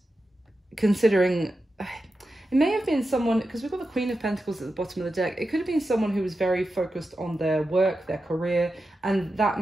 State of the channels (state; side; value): normal; both; correlation 0.90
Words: considering. It may have been someone, because we've got the Queen of Pentacles at the bottom of the deck. It could have been someone who was very focused on their work, their career, and that